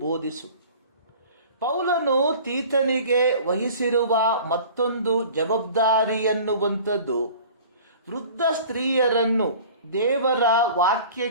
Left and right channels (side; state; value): both; inverted; correlation -0.44